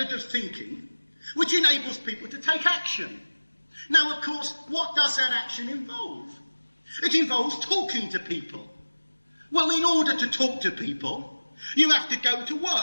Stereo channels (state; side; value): inverted; both; correlation -1.00